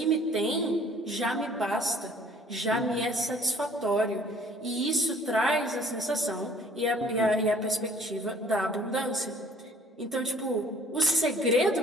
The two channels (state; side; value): normal; both; correlation 0.56